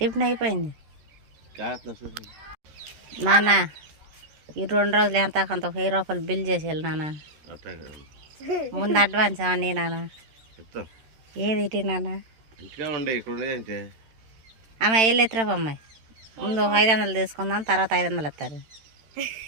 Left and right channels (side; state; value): left; late; 13 ms